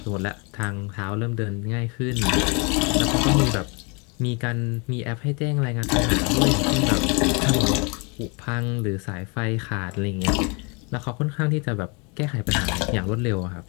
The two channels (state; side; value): quieter; right; 31.9 dB